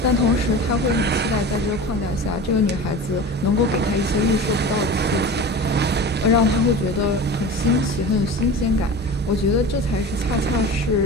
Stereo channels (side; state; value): both; normal; correlation 0.33